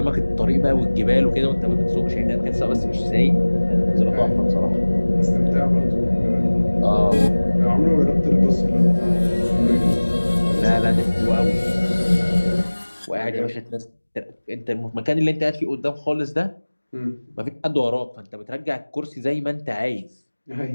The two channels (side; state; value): both; inverted; correlation -1.00